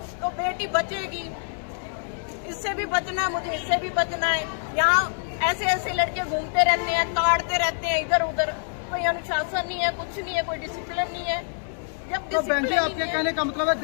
तो बेटी बचेगी। इससे भी बचना है, मुझे इससे भी बचना है। यहाँ ऐसे ऐसे लड़के घूमते रहते हैं, ताड़ते रहते हैं इधर उधर, कोई अनुशासन नहीं है, कुछ नहीं है, कोई डिसिप्लिन नहीं है। जब तो बहन जी आपके कहने का मतलब है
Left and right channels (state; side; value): silent; right; digital silence